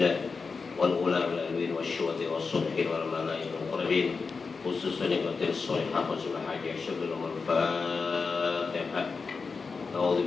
wal ula wal alwin wa syuhati wa subhin wal malaikati wal qurabin khususan nikmatil sholihah wa subhanallahi asyhadu an la Fatihah. A'udzu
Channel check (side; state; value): right; quieter; 4.7 dB